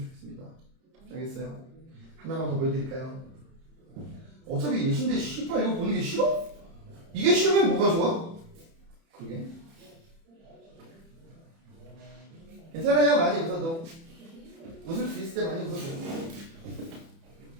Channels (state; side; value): late; left; 30 ms